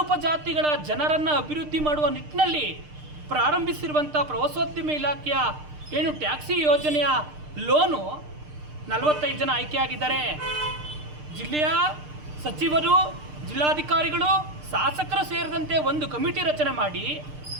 ಉಪಜಾತಿಗಳ ಜನರನ್ನು ಅಭಿವೃದ್ಧಿ ಮಾಡುವ ನಿಟ್ಟಿನಲ್ಲಿ ಪ್ರಾರಂಭಿಸಿರುವಂಥ ಪ್ರವಾಸೋದ್ಯಮ ಇಲಾಖೆಯ ಏನು ಟ್ಯಾಕ್ಸಿ ಯೋಜನೆಯ ಲೋನು 45 ಜನ ಆಯ್ಕೆಯಾಗಿದ್ದಾರೆ. ಜಿಲ್ಲೆಯ ಸಚಿವರು, ಜಿಲ್ಲಾಧಿಕಾರಿಗಳು, ಶಾಸಕರು ಸೇರಿದಂತೆ ಒಂದು ಕಮಿಟಿ ರಚನೆ ಮಾಡಿ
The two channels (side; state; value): left; late; 6.6 ms